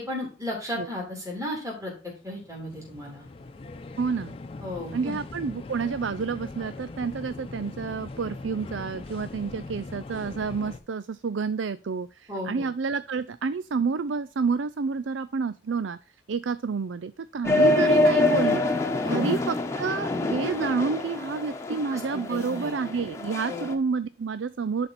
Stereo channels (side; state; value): both; normal; correlation 0.45